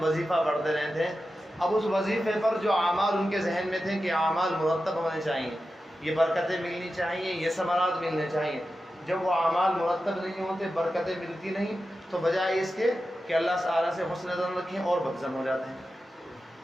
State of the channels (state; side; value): normal; both; correlation 0.92